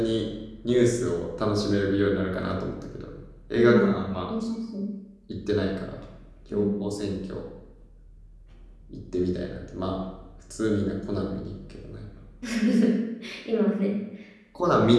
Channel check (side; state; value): both; identical; correlation 1.00